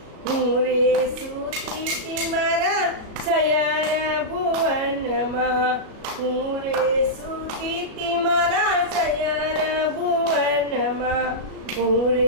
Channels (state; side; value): late; left; 37 ms